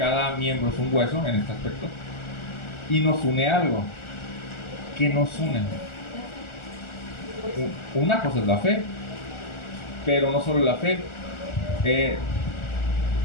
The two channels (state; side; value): late; right; 1.4 ms